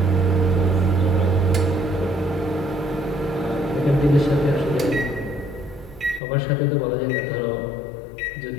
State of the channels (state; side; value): drops out; right; at 6.2 s